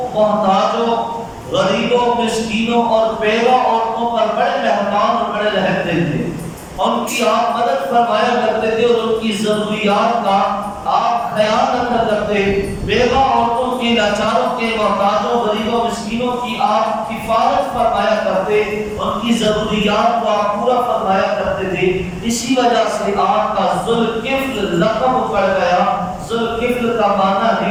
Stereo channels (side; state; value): both; identical; correlation 1.00